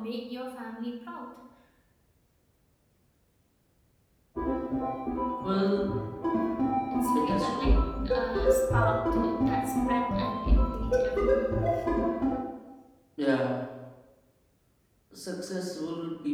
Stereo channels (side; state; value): both; identical; correlation 1.00